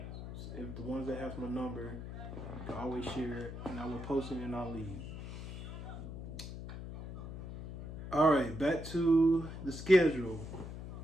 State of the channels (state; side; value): noise; left; hum, 9 dB below the sound